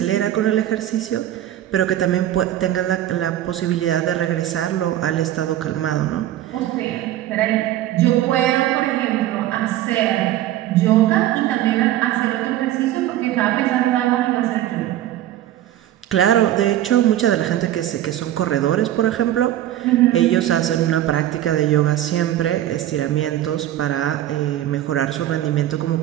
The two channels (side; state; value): left; quieter; 12.9 dB